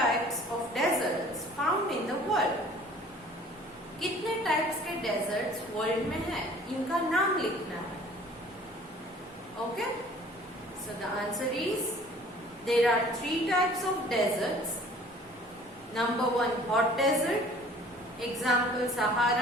of deserts found in the world. कितने types के desserts world में हैं? इनका नाम लिखना है. Okay? So the answer is there are 3 types of deserts. Number 1, hot desert. Example,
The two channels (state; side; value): normal; both; correlation 0.51